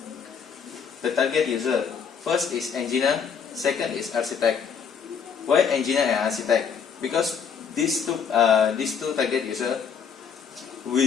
The target user, first is engineer, second is architect. Why engineer and architect? Because these two target user will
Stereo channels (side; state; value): right; quieter; 6.7 dB